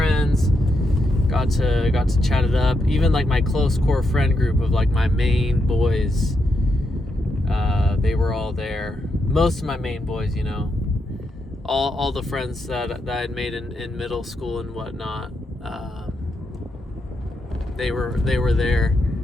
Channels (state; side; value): normal; both; correlation 0.82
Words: got to chat it up. Even like my close core friend group of like my main boys, they were all there. Most of my main boys, all the friends that I had made in middle school and whatnot, they were there,